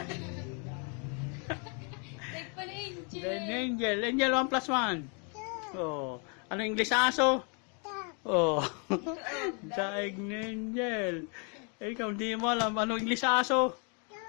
Like pala Angel. Then Angel. Angel, 1 plus 1. 2. Oh. Anong English sa aso? 2. Oh. Daig na Angel. Ikaw, hindi mo alam. Anong English sa aso?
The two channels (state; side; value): quieter; right; 37.1 dB